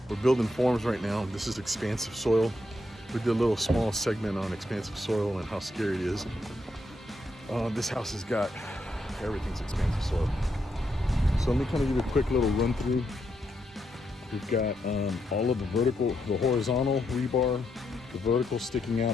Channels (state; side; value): normal; both; correlation 0.80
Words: We're building forms right now. This is expansive soil. We did a little small segment on expansive soil and how scary it is. This house has got everything's expansive soil. So let me kind of give you a quick little run through. We've got all of the horizontal rebar, the vertical sticking